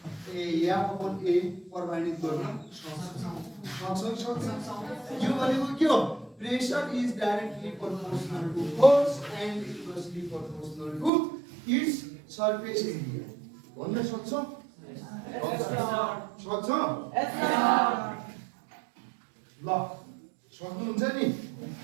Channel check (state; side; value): drops out; left; at 11.1 s